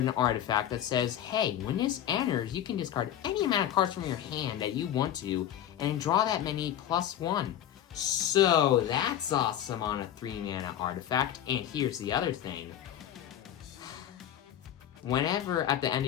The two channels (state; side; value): quieter; right; 10.9 dB